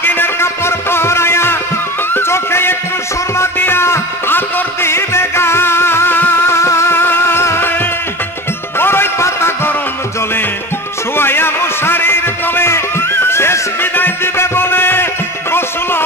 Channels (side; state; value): both; normal; correlation 0.32